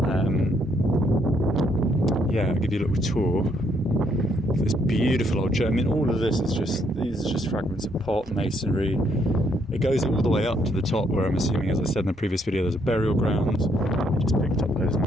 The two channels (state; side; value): normal; both; correlation 0.71